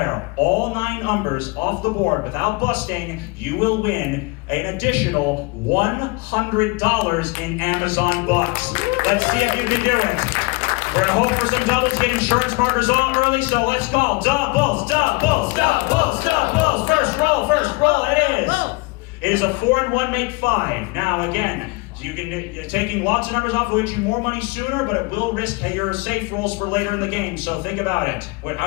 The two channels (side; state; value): right; quieter; 26.3 dB